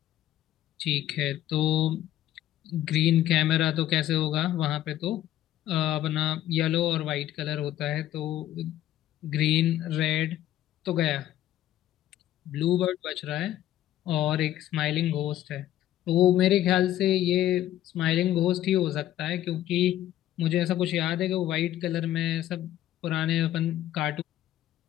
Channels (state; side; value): quieter; right; 13.0 dB